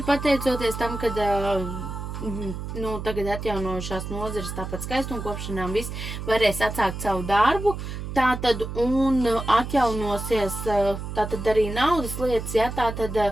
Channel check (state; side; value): noise; right; hum, 7 dB below the sound